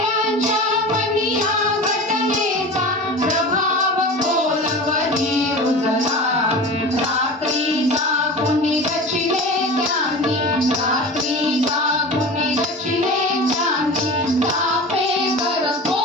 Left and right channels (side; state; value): both; normal; correlation 0.33